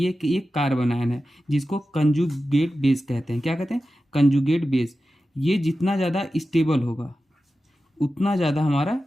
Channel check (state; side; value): normal; both; correlation 0.93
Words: एक कार्बन आयन है जिसको कंजुगेट बेस कहते हैं, क्या कहते हैं, कंजुगेट बेस। ये जितना ज़्यादा स्टेबल होगा उतना ज़्यादा हमारा